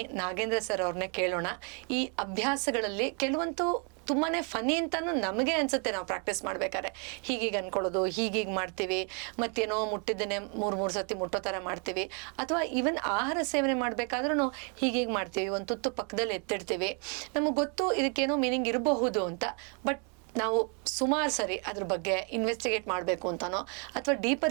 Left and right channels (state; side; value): quieter; left; 37.5 dB